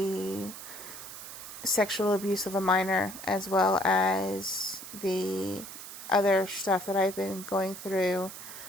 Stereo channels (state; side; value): noise; right; hiss, 12 dB below the sound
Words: sexual abuse of a minor, as well as the other stuff that I've been going through,